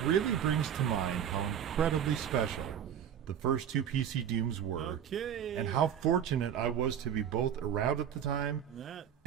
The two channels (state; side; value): quieter; left; 9.2 dB